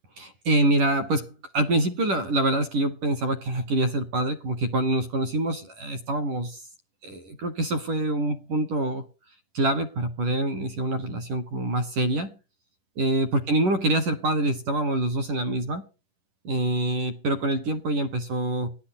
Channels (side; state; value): left; late; 10 ms